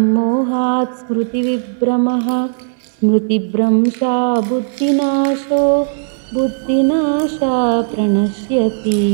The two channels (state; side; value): silent; left; digital silence